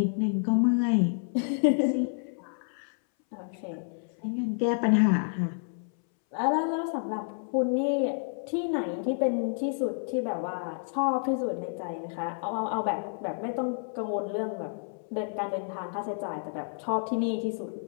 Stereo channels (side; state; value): right; silent; 58 dB below the other